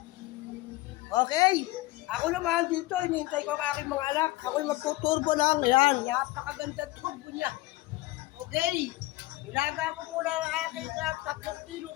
Okay. Ako naman dito, hinihintay ko ang aking mga anak. Ako'y magtuturbo lang. Ayan, napakaganda turbo niya. Okay. Ilaga ko muna ang aking 3 kilo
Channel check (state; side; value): quieter; right; 19.2 dB